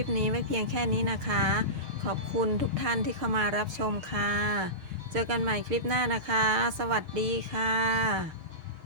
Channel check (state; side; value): late; left; 6.5 ms